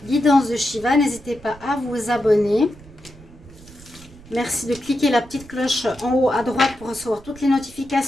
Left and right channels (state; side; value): noise; right; rumble, 21 dB below the sound